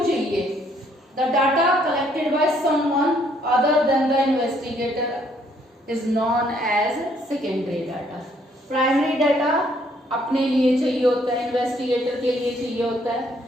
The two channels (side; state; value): both; normal; correlation 0.67